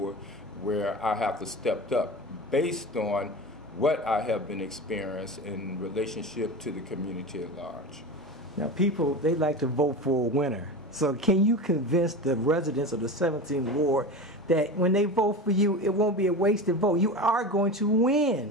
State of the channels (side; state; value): both; normal; correlation 0.28